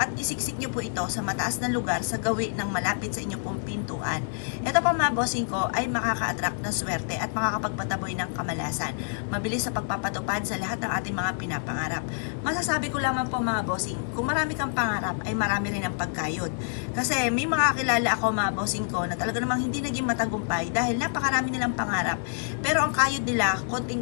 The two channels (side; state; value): right; silent; 58 dB below the other